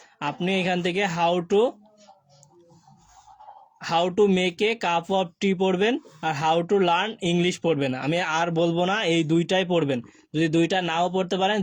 আপনি এখান থেকে how to make a cup of tea পড়বেন, আর হাউ টু লার্ন ইংলিশ পড়বেন। আমি আর বলবো না, এই দুইটাই পড়বেন। যদি দুইটা নাও পড়তে পারেন,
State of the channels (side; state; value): both; identical; correlation 1.00